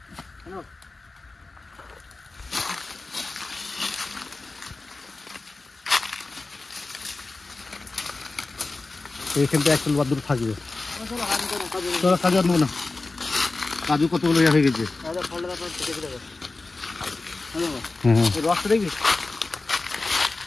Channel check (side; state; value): right; quieter; 3.5 dB